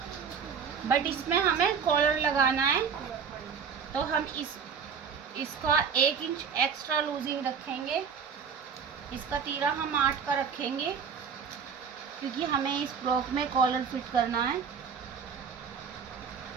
बट इसमें हमें कॉलर लगाना है, तो हम इसका 1 इंच एक्स्ट्रा लूजिंग रखेंगे। इसका तीरा हम 8 का रखेंगे, क्योंकि हमें इस फ्रॉक में कॉलर फिट करना है।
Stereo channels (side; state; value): left; quieter; 6.6 dB